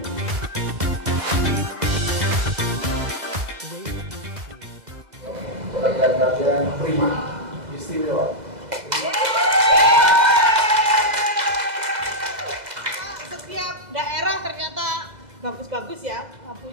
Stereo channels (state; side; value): late; left; 2.0 ms